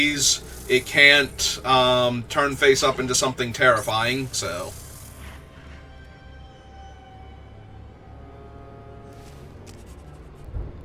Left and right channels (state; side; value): identical; both; correlation 1.00